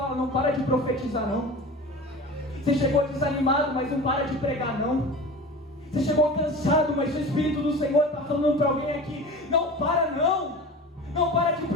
não para de profetizar não. Você chegou desanimado, mas não para de pregar não. Você chegou cansado, mas o Espírito do Senhor está falando para alguém aqui: não para não. Não para de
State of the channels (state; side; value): normal; both; correlation 0.35